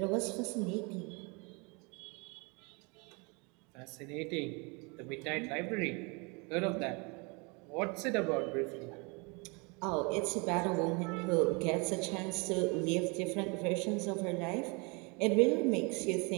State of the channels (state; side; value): quieter; left; 30.4 dB